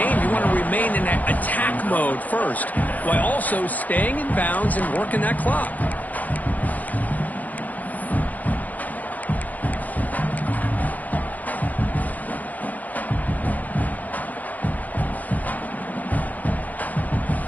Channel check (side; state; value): right; late; 0.080 ms